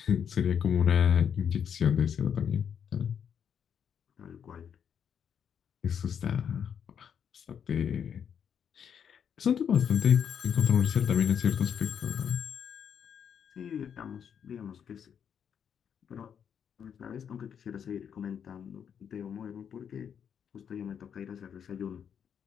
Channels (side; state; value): right; quieter; 8.0 dB